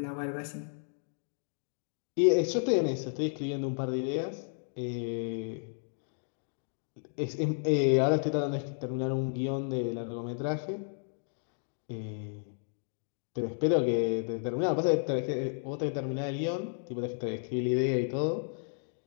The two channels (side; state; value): right; silent; 56 dB below the other